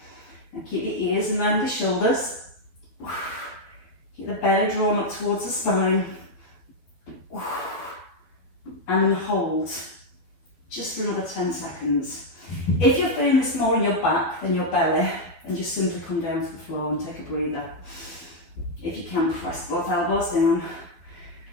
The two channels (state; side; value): late; right; 12 ms